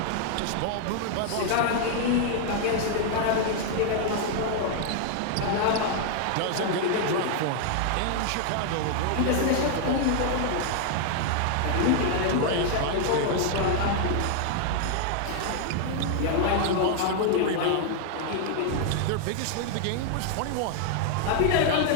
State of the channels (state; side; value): different; both; correlation 0.00